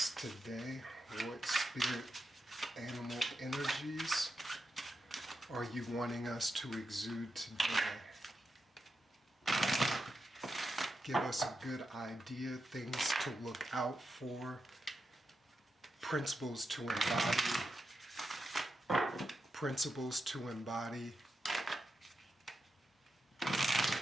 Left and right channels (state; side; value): normal; both; correlation 0.87